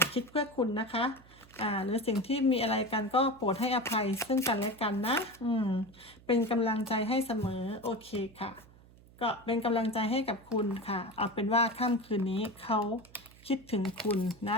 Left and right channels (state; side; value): noise; right; hum, 24 dB below the sound